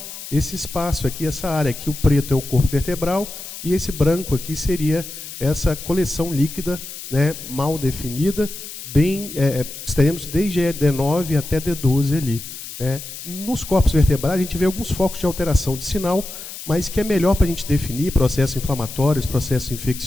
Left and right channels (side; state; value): left; noise; hiss, 11 dB below the sound